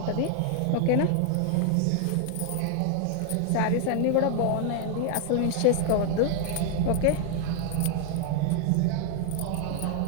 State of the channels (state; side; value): different; both; correlation 0.00